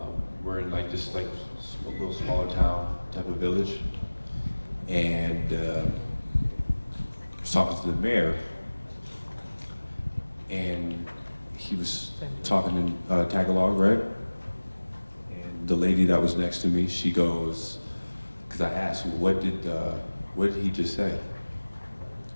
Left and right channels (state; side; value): inverted; both; correlation -1.00